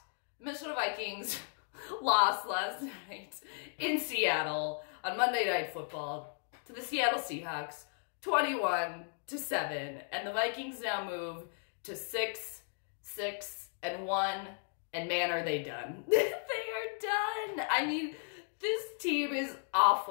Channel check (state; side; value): silent; right; 54 dB below the other